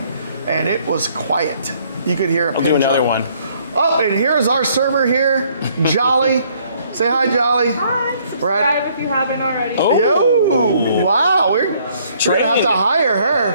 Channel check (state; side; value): inverted; both; correlation -0.64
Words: And it was quiet. You could hear a pin do another drop. one. Oh, and here's our server here, Jolly. Say hi, Jolly. Hi. Subscribe if you haven't already. Oh. Yo, wow. We're gonna have to hire